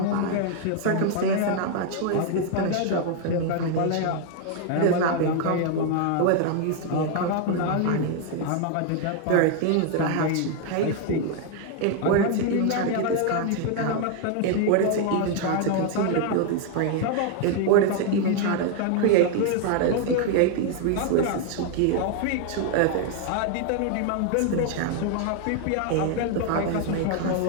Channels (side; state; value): both; different; correlation 0.00